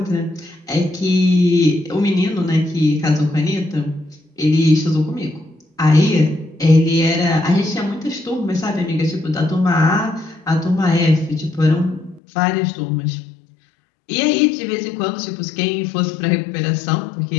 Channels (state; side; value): drops out; right; at 12.2 s